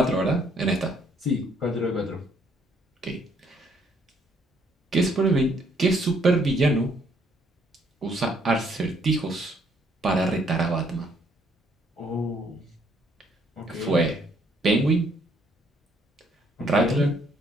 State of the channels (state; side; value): normal; both; correlation 0.67